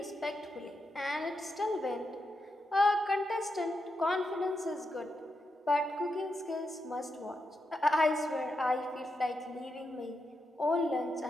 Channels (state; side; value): normal; both; correlation 0.85